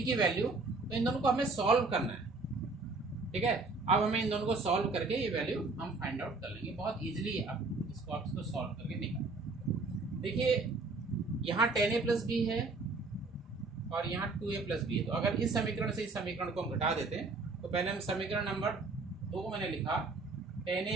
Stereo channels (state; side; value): quieter; left; 3.7 dB